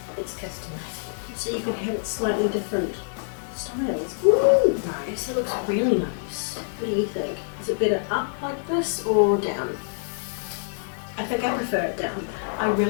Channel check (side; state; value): right; silent; digital silence